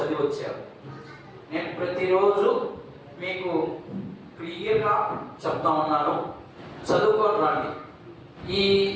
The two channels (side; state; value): both; identical; correlation 1.00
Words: వచ్చారు? నేను ప్రతిరోజు మీకు క్లియర్గా చెప్తా ఉన్నాను, చదువుకొని రండి. ఈ